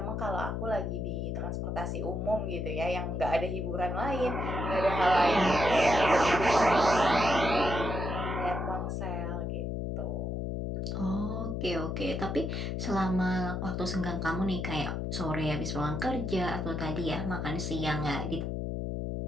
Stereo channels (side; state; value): left; noise; hum, 2 dB below the sound